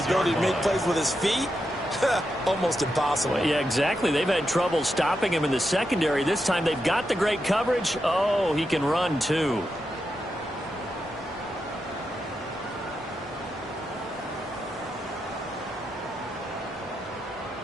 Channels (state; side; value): normal; both; correlation 0.86